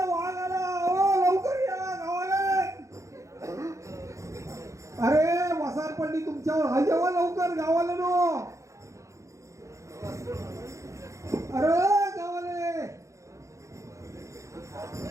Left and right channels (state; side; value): late; left; 0.15 ms